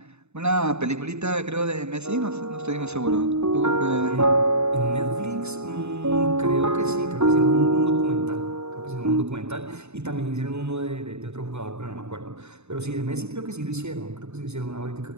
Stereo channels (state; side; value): late; left; 0.81 ms